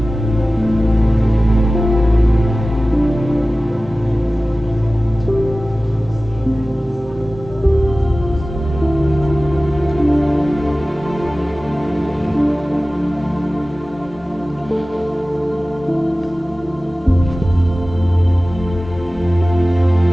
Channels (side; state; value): both; normal; correlation 0.97